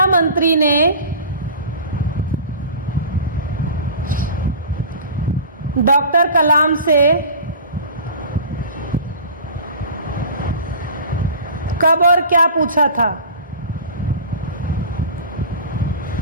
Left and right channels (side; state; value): both; inverted; correlation -0.37